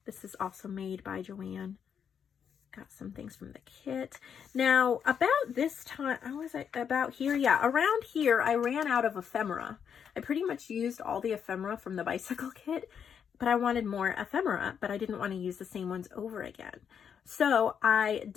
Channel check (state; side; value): quieter; right; 7.6 dB